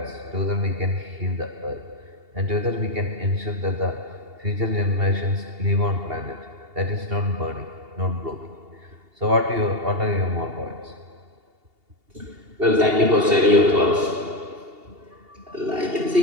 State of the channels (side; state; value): left; late; 2.8 ms